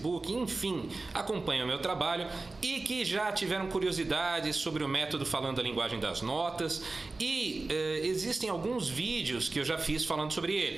enfim, acompanham o meu trabalho e que já tiveram curiosidades sobre o método falando a linguagem das notas e existem alguns vídeos que eu já fiz falando sobre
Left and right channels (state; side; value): quieter; left; 3.4 dB